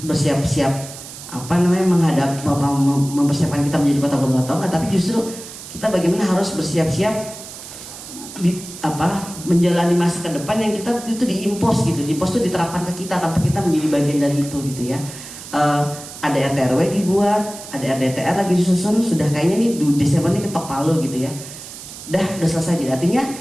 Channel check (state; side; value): noise; right; hiss, 13 dB below the sound